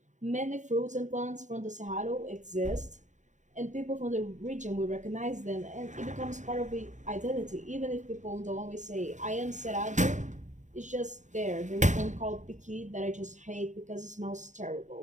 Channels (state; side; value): late; left; 0.35 ms